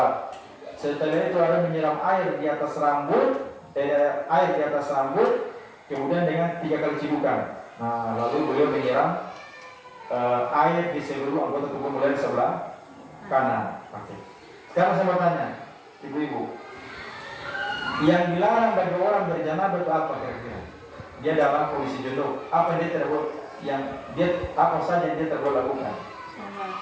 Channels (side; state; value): both; identical; correlation 1.00